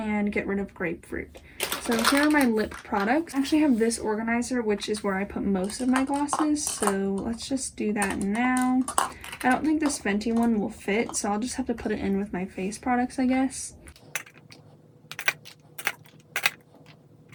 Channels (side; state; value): both; identical; correlation 1.00